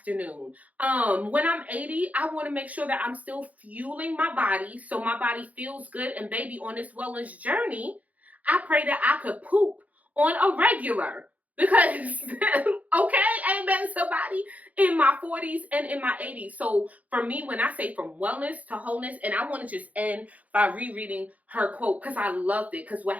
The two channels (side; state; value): left; late; 0.072 ms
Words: When I'm 80, I want to make sure that I'm still fueling my body so my body feels good. And baby, on this wellness journey, I pray that I could poop on a regular. Because, okay, amen, somebody, in my 40s and in my 80s. So for me, when I say from wellness to wholeness, and I want to just end by rereading her quote, because I loved it. Because what